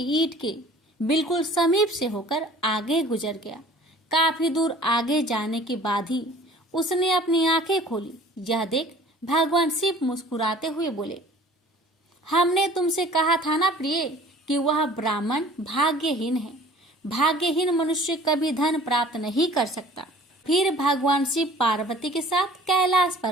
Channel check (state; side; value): normal; both; correlation 0.49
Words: ईंट के बिल्कुल समीप से होकर आगे गुजर गया। काफी दूर आगे जाने के बाद ही उसने अपनी आंखें खोली। यह देख भगवान शिव मुस्कुराते हुए बोले, हमने तुमसे कहा था ना प्रिय कि वह ब्राह्मण भाग्यहीन है। भाग्यहीन मनुष्य कभी धन प्राप्त नहीं कर सकता। फिर भगवान शिव पार्वती के साथ कैलाश